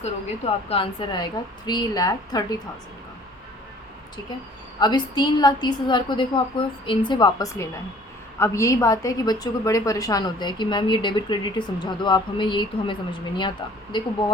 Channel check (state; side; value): normal; both; correlation 0.52